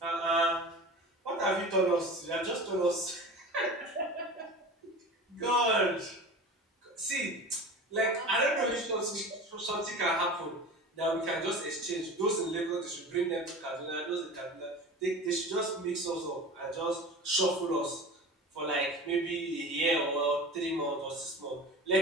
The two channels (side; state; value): both; normal; correlation 0.35